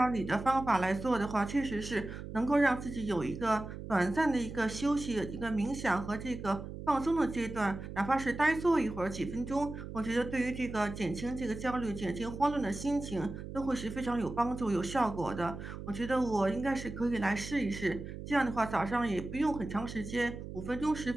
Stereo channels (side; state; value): right; noise; hum, 9 dB below the sound